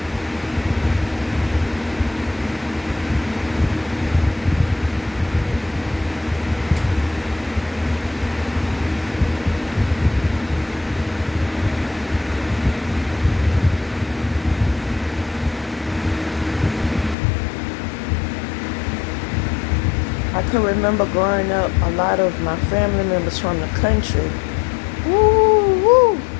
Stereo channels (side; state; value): right; drops out; at 17.2 s